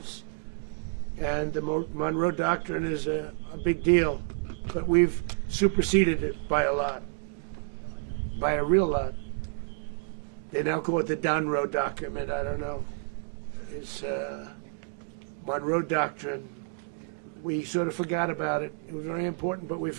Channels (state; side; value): silent; left; digital silence